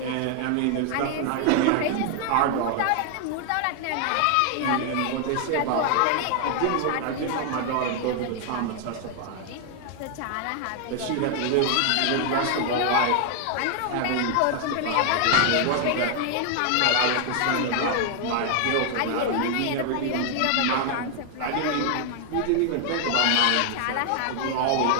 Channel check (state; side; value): different; both; correlation 0.00